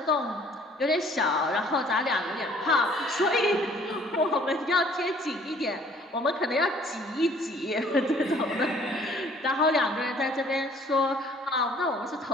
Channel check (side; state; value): both; normal; correlation 0.57